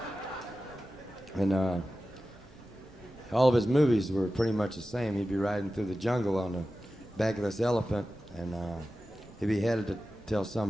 All of his movies were pretty much the same. He'd be riding through the jungle on the back of this elephant, and he'd be headed to tell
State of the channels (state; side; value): normal; both; correlation 0.94